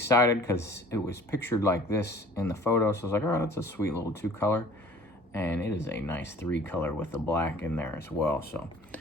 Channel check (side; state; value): both; normal; correlation 0.49